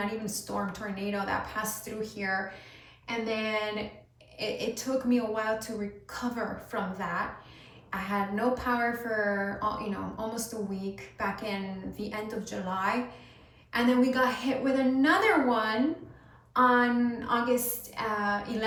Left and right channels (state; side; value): identical; both; correlation 1.00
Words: even storm, tornado that passed through here, and then it took me a while to recover from that. I had no power for almost a week back in the end of July, and then we got hit with another one on August